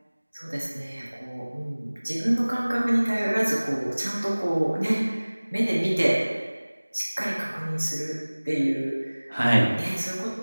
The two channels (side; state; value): both; inverted; correlation -1.00